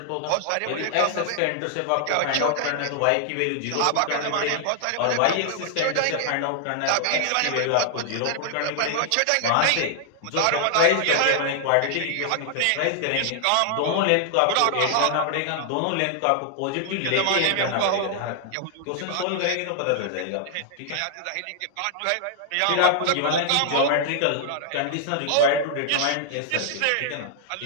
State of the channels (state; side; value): different; both; correlation 0.00